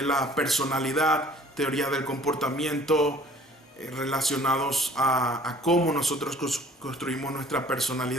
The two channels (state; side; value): normal; both; correlation 0.52